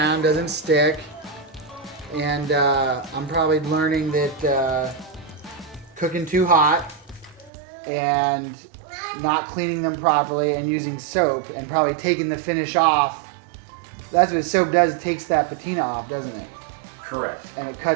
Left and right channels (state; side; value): drops out; left; at 7.5 s